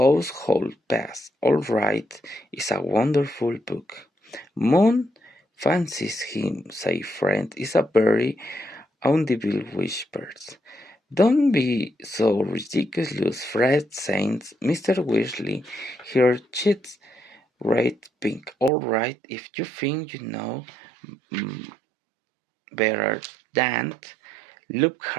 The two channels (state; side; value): drops out; left; at 18.7 s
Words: past. All right, it's a wonderful book." "Moon fancies him," said Fred. "It's a very audible whispers." "Don't be so ridiculous, Fred," said Mr. Weasley, her cheeks red pink. "All right, if you think you know better than